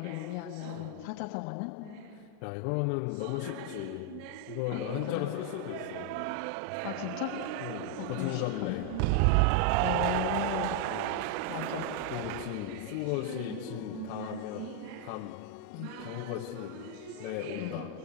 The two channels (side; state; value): both; different; correlation 0.00